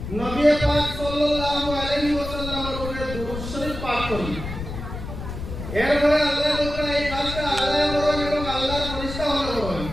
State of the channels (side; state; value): left; noise; rumble, 8 dB below the sound